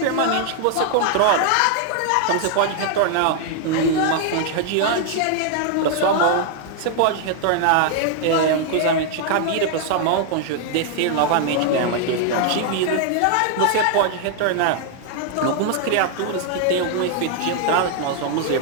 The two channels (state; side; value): different; both; correlation 0.00